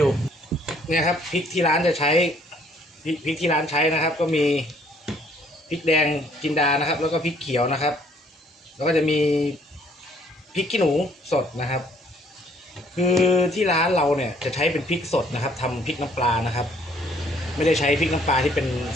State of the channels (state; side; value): normal; both; correlation 0.62